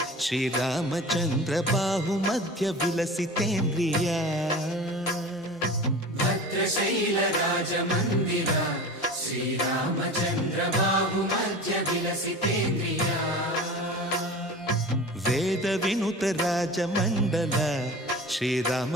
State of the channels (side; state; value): both; normal; correlation 0.35